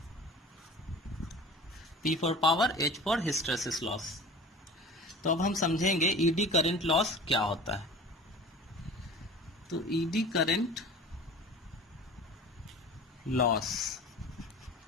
P for power, H for hysteresis loss. तो अब हम समझेंगे ईडी करंट लॉस क्या होता है। तो ईडी करंट लॉस,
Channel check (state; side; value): normal; both; correlation 0.39